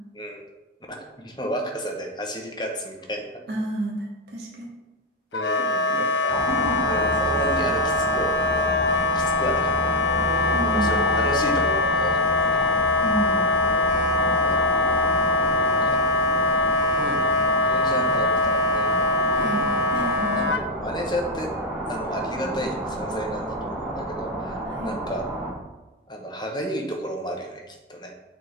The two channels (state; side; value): normal; both; correlation 0.01